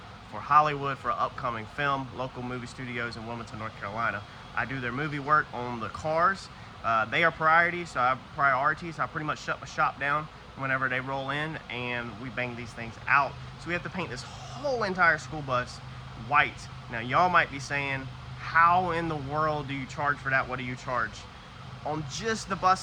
for Hollywood for an upcoming film, local movie studios in Wilmington, North Carolina. I do their movie work on the cars. They are priority, so I have priorities. I pretty much shut my shop down whenever they roll in, and we bang these things out. So we have to paint this whole entire school bus white. Now y'all might be saying, how in the world do you charge for that? What do you charge? On just the bus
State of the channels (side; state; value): both; identical; correlation 1.00